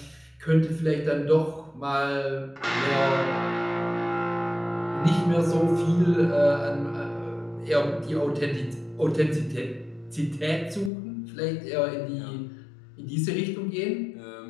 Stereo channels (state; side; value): drops out; right; at 10.9 s